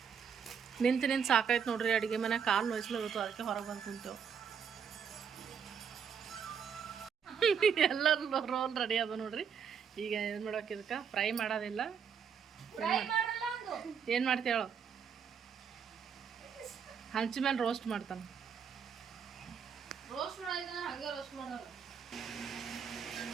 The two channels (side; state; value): left; quieter; 7.1 dB